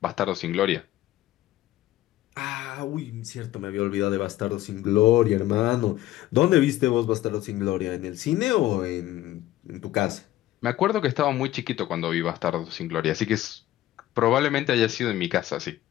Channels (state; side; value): quieter; right; 14.6 dB